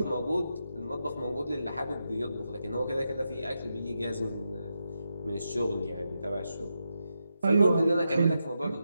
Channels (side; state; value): both; inverted; correlation -0.86